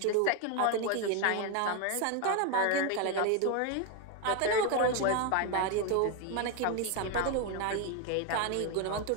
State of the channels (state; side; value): different; both; correlation 0.01